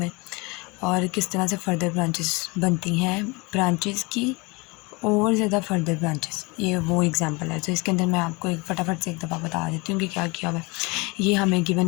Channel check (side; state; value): right; quieter; 26.6 dB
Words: और किस तरह से फ़र्दर ब्रांचेस बनती हैं ब्रांचेस की और ज़्यादा फर्दर ब्रांचेस। ये वो एग्जांपल है। तो इसके अंदर मैं आपको एक फटाफट से एक दफ़ा बता देती हूँ कि क्या किया हुआ है। ये हमें